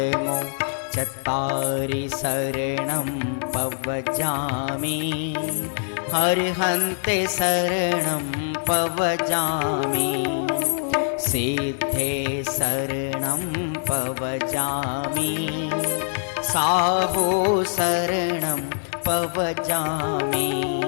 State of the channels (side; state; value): right; silent; digital silence